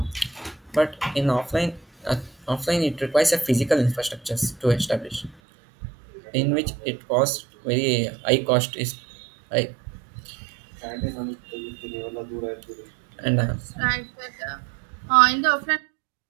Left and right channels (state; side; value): drops out; left; at 5.4 s